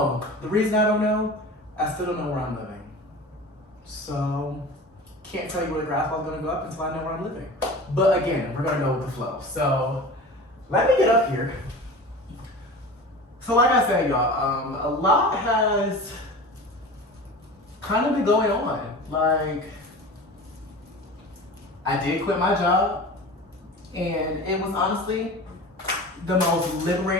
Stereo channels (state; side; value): normal; both; correlation 0.35